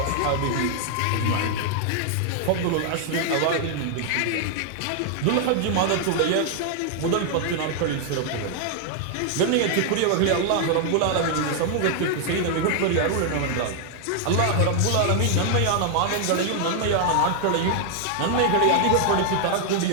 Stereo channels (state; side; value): different; both; correlation 0.00